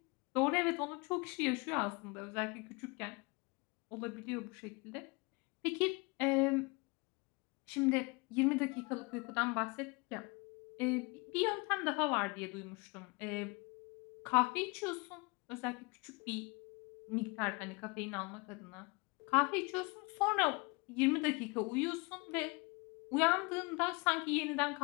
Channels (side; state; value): right; quieter; 27.7 dB